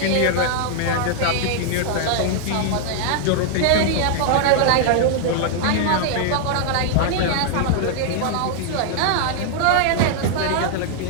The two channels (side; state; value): both; different; correlation -0.01